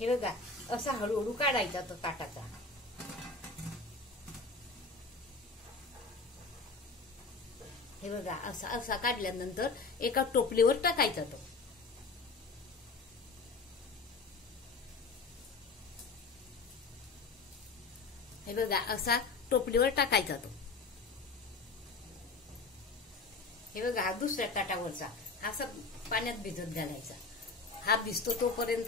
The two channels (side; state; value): right; quieter; 4.0 dB